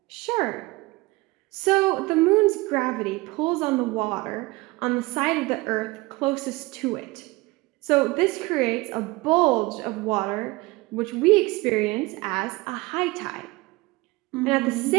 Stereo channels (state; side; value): quieter; left; 22.5 dB